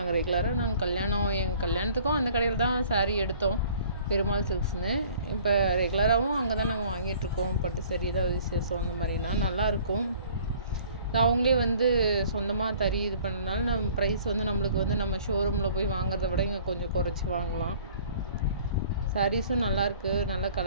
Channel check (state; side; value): inverted; both; correlation -0.53